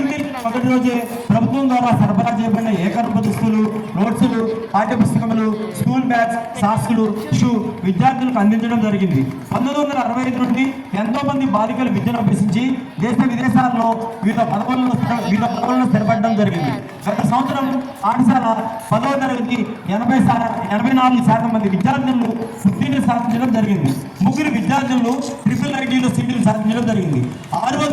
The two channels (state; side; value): identical; both; correlation 1.00